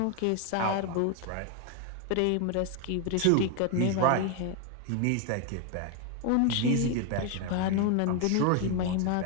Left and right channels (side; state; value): both; different; correlation 0.01